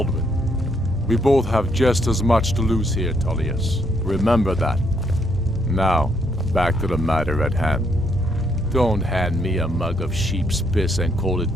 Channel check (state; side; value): normal; both; correlation 0.73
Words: we both have just as much to lose here, Tullius. Remember that. Now, back to the matter at hand. Don't hand me a mug of sheep's piss and call it